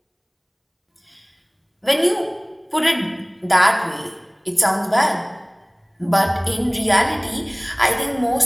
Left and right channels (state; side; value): identical; both; correlation 1.00